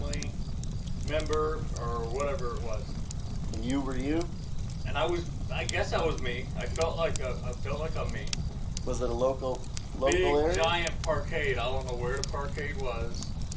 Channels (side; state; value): both; identical; correlation 1.00